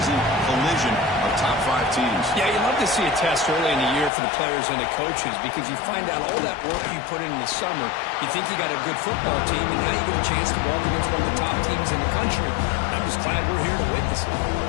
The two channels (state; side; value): drops out; right; at 4.1 s